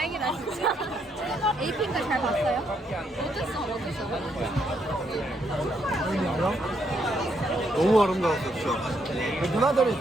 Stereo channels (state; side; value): normal; both; correlation 0.75